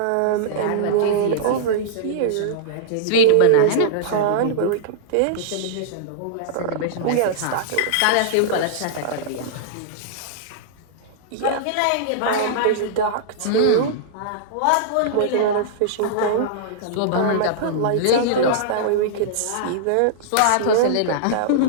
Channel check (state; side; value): different; both; correlation -0.02